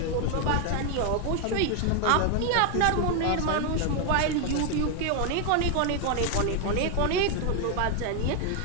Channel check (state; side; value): different; both; correlation 0.01